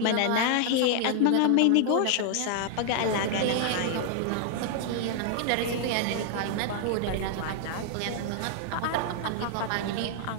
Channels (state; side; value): different; both; correlation 0.00